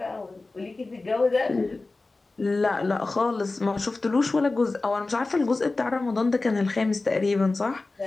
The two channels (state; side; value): quieter; right; 3.4 dB